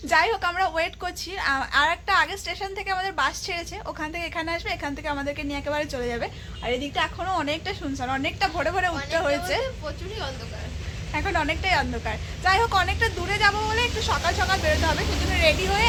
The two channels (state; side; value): identical; both; correlation 1.00